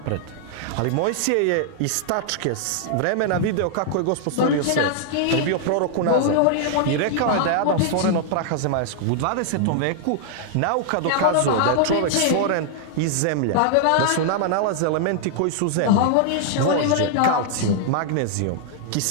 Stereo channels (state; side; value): different; both; correlation -0.01